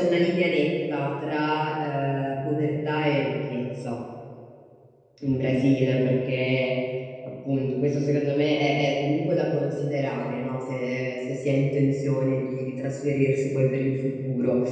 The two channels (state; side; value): identical; both; correlation 1.00